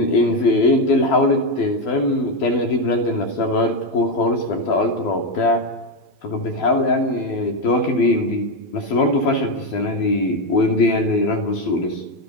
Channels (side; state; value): right; late; 12 ms